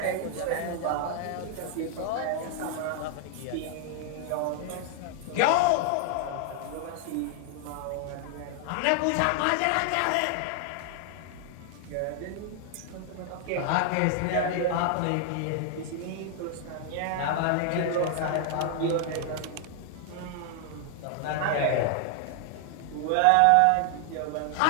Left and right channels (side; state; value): both; different; correlation 0.00